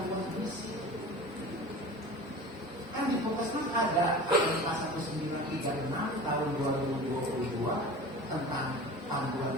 gizi. Kan di Puskesmas ada PMK 1936 tahun 2022 tentang panduan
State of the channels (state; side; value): normal; both; correlation 0.36